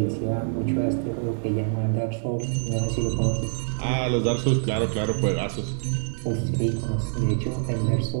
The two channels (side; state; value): left; silent; digital silence